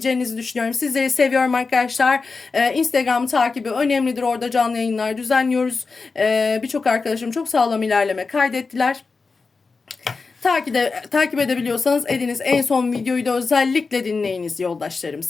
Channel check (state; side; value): quieter; right; 4.4 dB